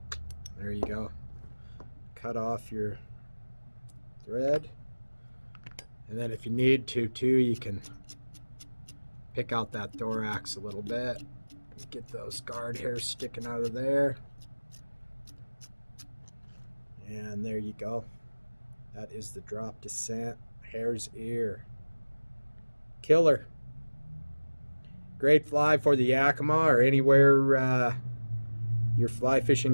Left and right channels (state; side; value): inverted; both; correlation -1.00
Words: There you go. Cut off your thread. And then if you need to too, you can pick out that thorax a little bit. Get those guard hairs sticking out of there. And there you go. That is the drop descent Hare's Ear. Killer. Great fly for the Yakima or anywhere your fly